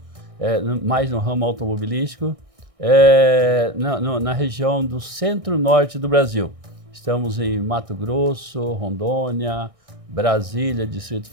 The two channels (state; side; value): late; left; 1.6 ms